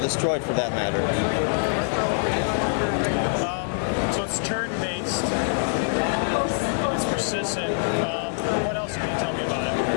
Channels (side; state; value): right; silent; 62 dB below the other